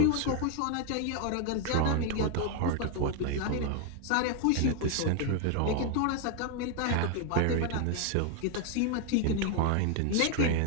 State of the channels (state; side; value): different; both; correlation 0.01